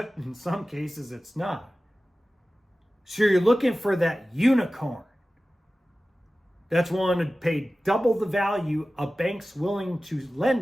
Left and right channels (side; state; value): both; normal; correlation 0.96